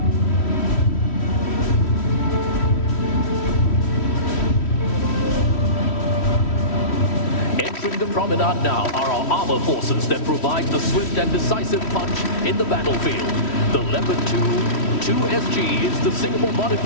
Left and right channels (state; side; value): late; right; 3.1 ms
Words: Entering the promenade now are our armor forces that provide the swift and decisive punch in the battlefield. The Leopard 2SG is the Singapore